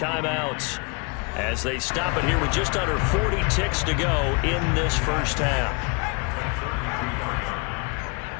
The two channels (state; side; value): quieter; right; 32.2 dB